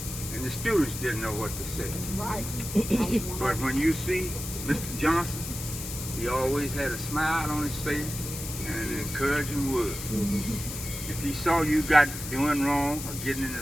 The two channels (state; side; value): noise; left; hiss, 8 dB below the sound